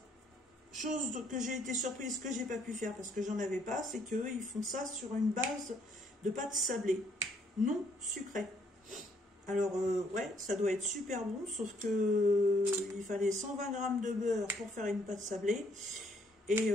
chose que j'ai été surprise, que j'ai pas pu faire parce que j'en avais pas, c'est qu'ils font ça sur une base de pâte sablée, non sucrée. Alors, ouais, ça doit être super bon, sauf que il fallait 120 g de beurre pour faire une pâte sablée. Et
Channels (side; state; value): both; normal; correlation 0.67